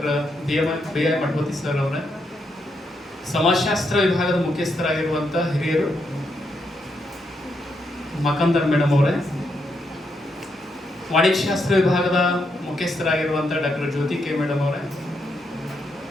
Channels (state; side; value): normal; both; correlation 0.80